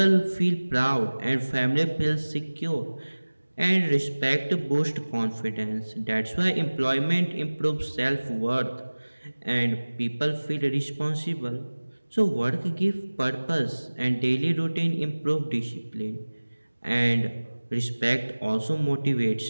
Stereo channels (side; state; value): both; inverted; correlation -1.00